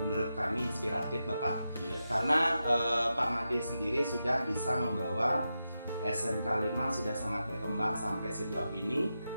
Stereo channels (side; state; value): both; inverted; correlation -0.89